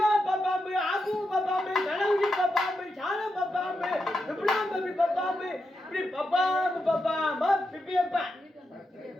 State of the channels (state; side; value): normal; both; correlation 0.86